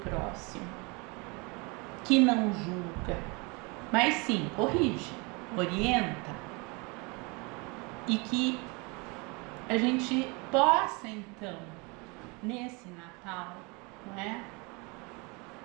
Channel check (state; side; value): quieter; left; 28.8 dB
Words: próximo, que não julga, mas sim corrige, orienta, e que a gente possa então, nesse Natal, não é?